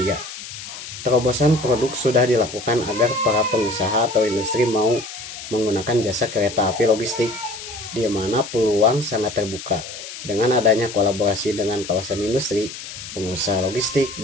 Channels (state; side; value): noise; left; hiss, 11 dB below the sound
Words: Terobosan produk sudah dilakukan agar para pengusaha atau industri mau menggunakan jasa kereta api logistik, di mana peluang sangat terbuka dengan adanya kolaborasi dengan kawasan industri, pengusaha logistik,